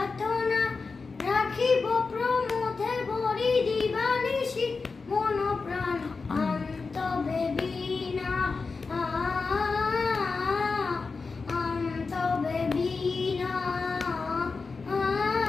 রাখিব প্রমোদে বরি দিবানিশি মন প্রাণ আন্তবে বিনা আন্তবে বিনা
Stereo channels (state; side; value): quieter; right; 4.4 dB